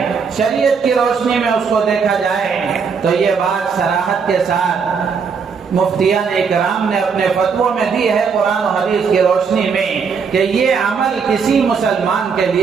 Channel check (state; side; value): quieter; left; 5.8 dB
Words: شریعت کی روشنی میں اس کو دیکھا جائے، تو یہ بات صراحت کے ساتھ مفتیان اکرام نے اپنے فتووں میں دی ہے قرآن و حدیث کی روشنی میں کہ یہ عمل کسی مسلمان کے